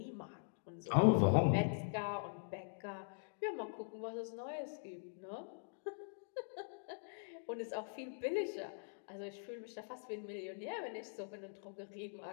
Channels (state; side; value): silent; right; digital silence